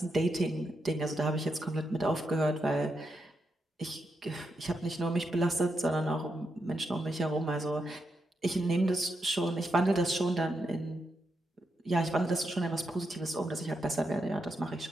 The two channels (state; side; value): normal; both; correlation 0.84